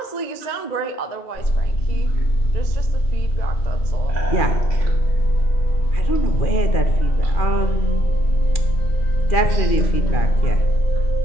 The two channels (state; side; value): late; right; 2.4 ms